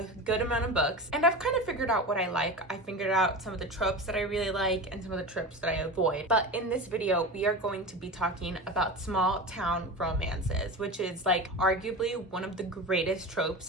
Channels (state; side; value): normal; both; correlation 0.28